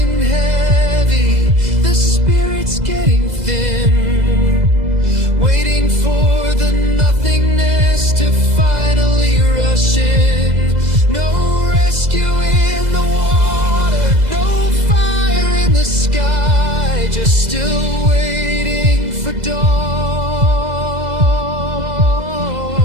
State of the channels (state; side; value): late; left; 2.0 ms